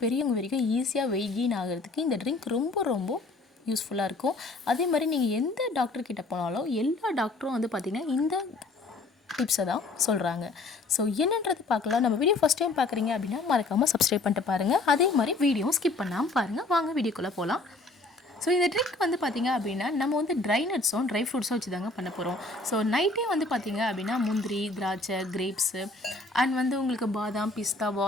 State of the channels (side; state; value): right; quieter; 3.2 dB